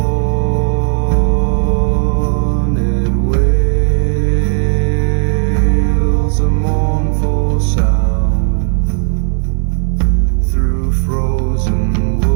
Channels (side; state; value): left; silent; 58 dB below the other